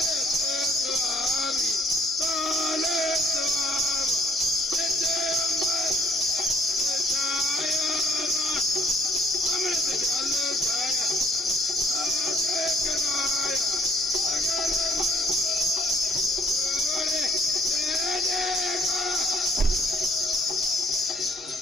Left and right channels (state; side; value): normal; both; correlation 0.61